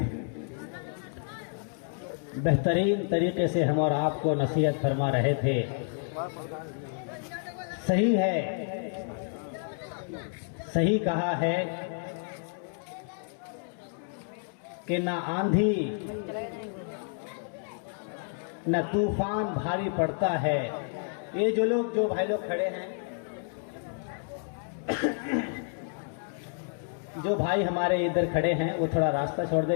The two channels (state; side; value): silent; right; 58 dB below the other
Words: بہترین طریقے سے ہم اور آپ کو نصیحت فرما رہے تھے. صحیح ہے، صحیح کہا ہے کہ نہ آندھی نہ طوفان بھاری پڑتا ہے. یہ جو بھائی لوگ کھڑے ہیں، جو بھائی ہمارے ادھر کھڑے ہیں وہ تھوڑا راستہ چھوڑ دے،